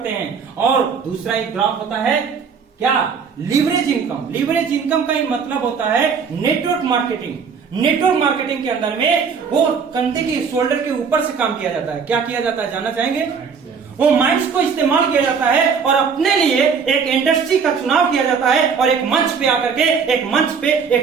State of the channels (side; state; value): left; quieter; 6.0 dB